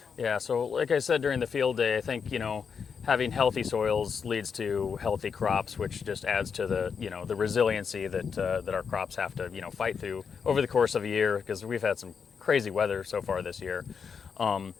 Yeah, so like I said during the field day, I think, having healthy soils leads to healthy crops, which just adds to the resiliency that our crops have to, fight through over the course of a year, because we've had some crazy weather so far this year. But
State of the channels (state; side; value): quieter; right; 6.3 dB